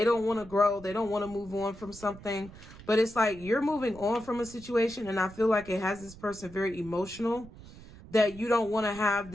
don't want to grow. They don't want to move on from something. But it's like you're moving on from a situation, and I feel like it has this person very emotional, that you don't want to have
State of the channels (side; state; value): right; noise; rumble, 18 dB below the sound